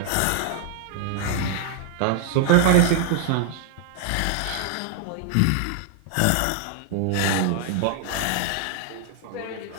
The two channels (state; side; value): different; both; correlation 0.00